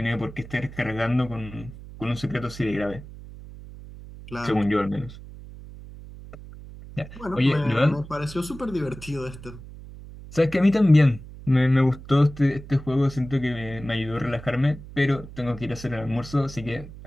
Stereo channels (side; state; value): right; noise; hum, 15 dB below the sound